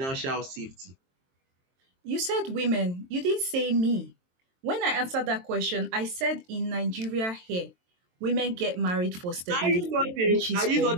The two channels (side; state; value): left; late; 22 ms